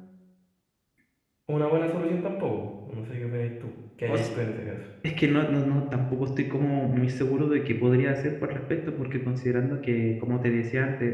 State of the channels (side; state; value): both; identical; correlation 1.00